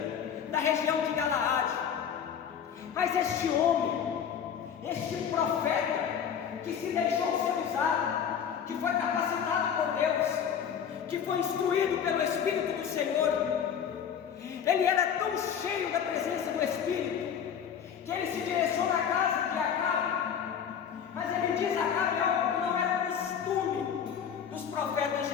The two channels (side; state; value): right; quieter; 8.0 dB